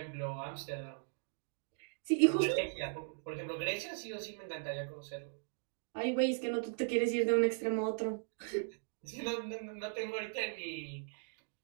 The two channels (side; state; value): left; silent; digital silence